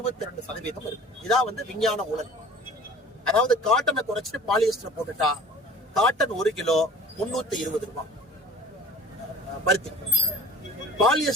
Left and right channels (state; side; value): normal; both; correlation 0.44